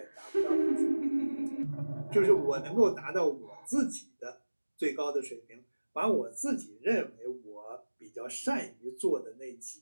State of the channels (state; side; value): inverted; both; correlation -1.00